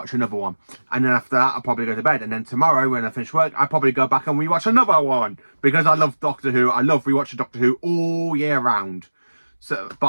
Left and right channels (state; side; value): inverted; both; correlation -1.00